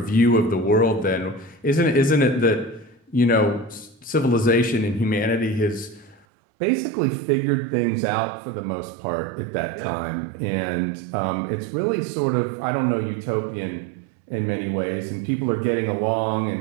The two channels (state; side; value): drops out; left; at 6.2 s